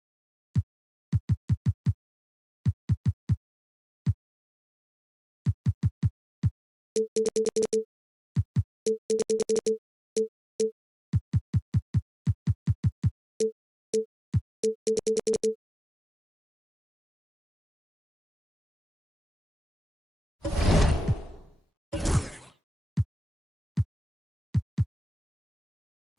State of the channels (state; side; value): normal; both; correlation 0.96